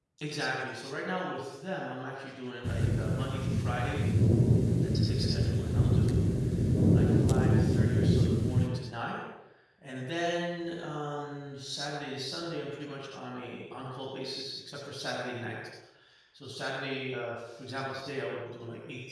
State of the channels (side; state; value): both; identical; correlation 1.00